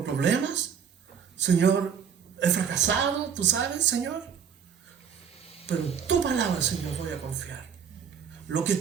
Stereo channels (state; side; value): quieter; left; 7.4 dB